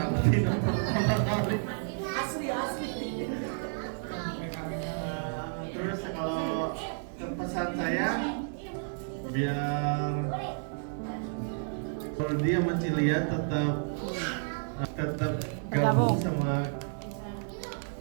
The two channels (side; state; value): left; silent; digital silence